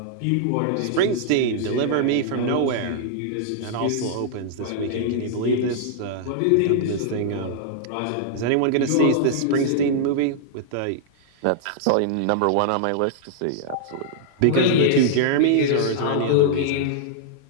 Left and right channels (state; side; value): different; both; correlation -0.01